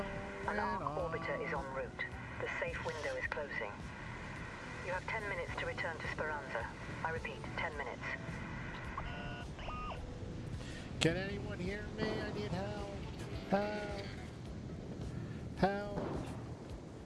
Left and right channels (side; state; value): both; identical; correlation 1.00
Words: An arc on. orbiter is en route. The safe window is closing. You have 10 minutes to return to Speranza. I repeat, 10 minutes. Can anyone hear me? I need help. Help. Help.